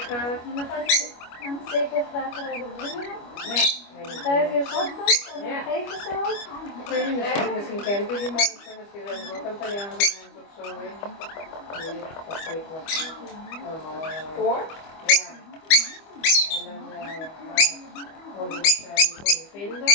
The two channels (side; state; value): right; late; 25 ms